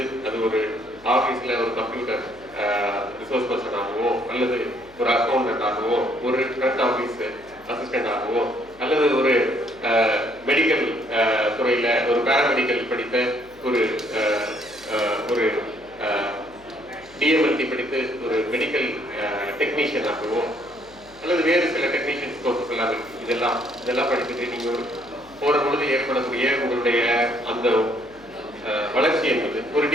அது ஒரு ஆபீஸ்ல ஒரு கம்ப்யூட்டர் ரிசோர்ஸ் பர்சன் ஆகவோ, அல்லது ஒரு அக்கௌண்டன்ட் ஆகவோ, ஒரு ஃப்ரண்ட் ஆபீஸ் அசிஸ்டன்ட் ஆகவோ, அல்லது ஒரு மெடிக்கல் துறையில ஒரு பேராமெடிக்கல் படித்த ஒரு டிஎம்எல்டி படித்து ஒரு மெடிக்கல் டெக்னீஷியன் ஆகவோ, அல்லது வேறு சில டெக்னீஷியன்ஸ் கோர்சஸ் எல்லாம் இருக்கு. இதெல்லாம் படிச்சுட்டு நீங்க போற பொழுது ஏற்படக்கூடிய உங்களுடைய அந்த வளர்ச்சி என்பது, ஒரு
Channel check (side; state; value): left; noise; hum, 26 dB below the sound